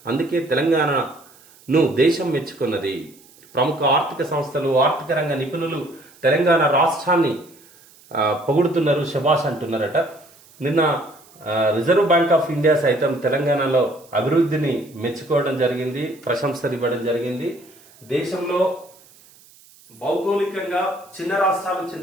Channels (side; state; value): right; noise; hiss, 26 dB below the sound